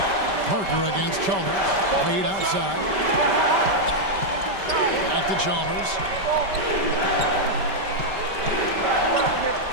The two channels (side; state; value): left; late; 5.1 ms